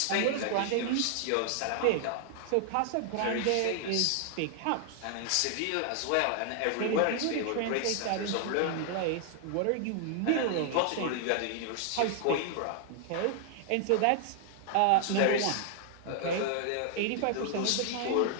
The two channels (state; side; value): different; both; correlation 0.00